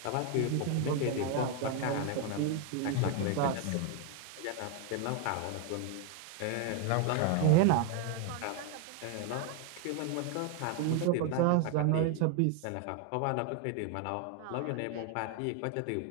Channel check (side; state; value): both; different; correlation 0.01